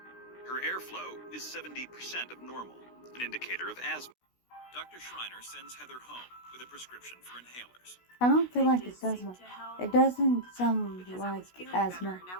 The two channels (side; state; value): right; late; 16 ms